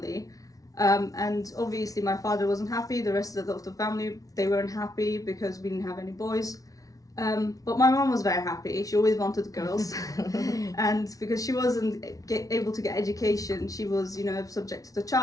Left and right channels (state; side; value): late; right; 0.17 ms